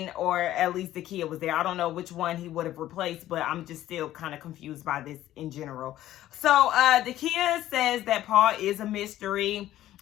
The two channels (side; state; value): right; quieter; 13.6 dB